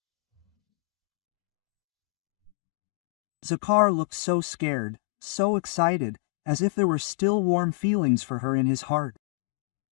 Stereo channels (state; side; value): drops out; right; at 2.5 s